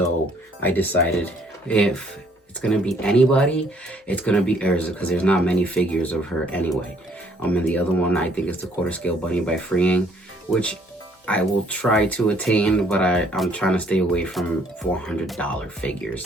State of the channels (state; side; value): normal; both; correlation 0.64